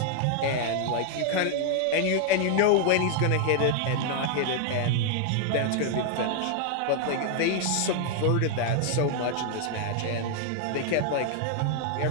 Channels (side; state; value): both; different; correlation 0.00